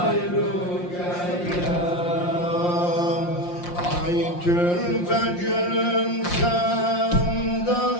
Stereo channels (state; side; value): late; right; 5.7 ms